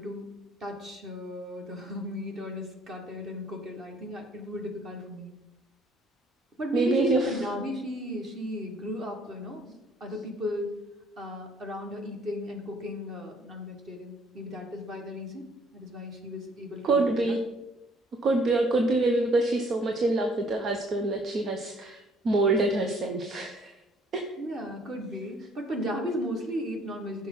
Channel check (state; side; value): normal; both; correlation 0.61